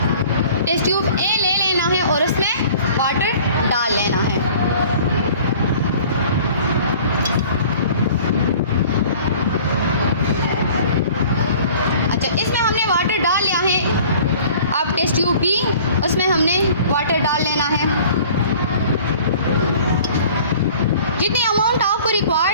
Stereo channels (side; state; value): both; inverted; correlation -0.48